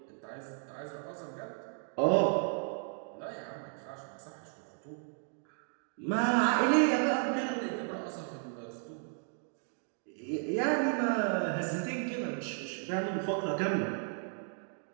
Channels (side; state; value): left; silent; 55 dB below the other